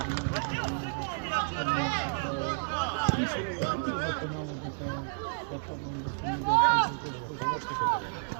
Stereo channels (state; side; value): silent; left; digital silence